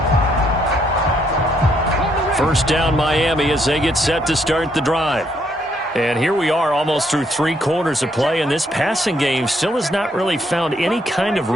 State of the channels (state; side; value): normal; both; correlation 0.72